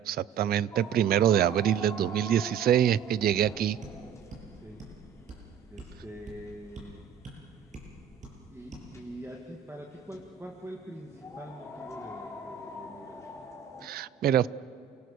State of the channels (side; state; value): left; quieter; 9.1 dB